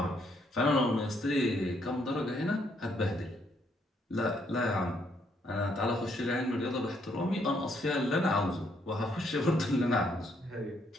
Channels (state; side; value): normal; both; correlation 0.72